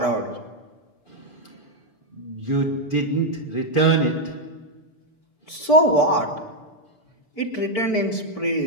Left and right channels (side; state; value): right; late; 6.8 ms